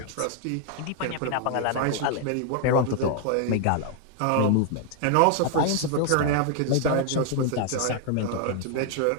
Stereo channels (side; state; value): both; different; correlation 0.00